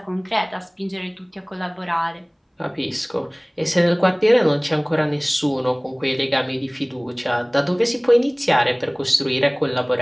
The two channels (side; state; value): both; identical; correlation 1.00